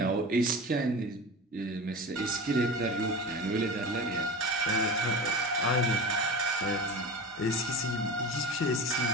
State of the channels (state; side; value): normal; both; correlation 0.30